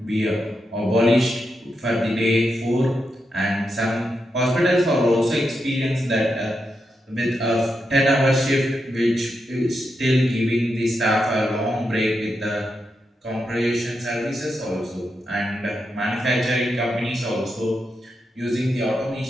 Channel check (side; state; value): both; normal; correlation 0.85